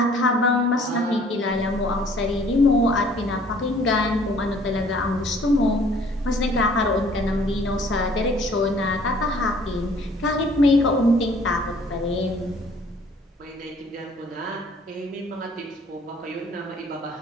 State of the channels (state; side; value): normal; both; correlation 0.57